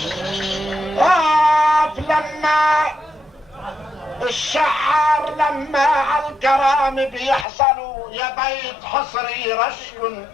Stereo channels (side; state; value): right; drops out; at 7.5 s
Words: الشعار لما عالكرام بيحصلوا، يا بيت حصري رشق